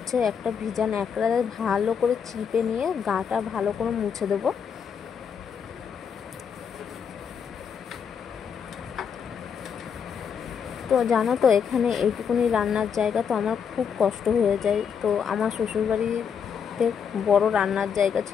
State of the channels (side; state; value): right; quieter; 7.1 dB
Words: একটা ভিজা ন্যাকড়ায় ভালো করে চিপে নিয়ে গাটা ভালো করে মুছে দেবো। তো জানো তো এখানে এইটুকুনি রান্নার জায়গা, তো আমার খুব কষ্ট হয়ে যায়। তো আমার শ্বশুরবাড়িতে বড় রান্নার জায়গা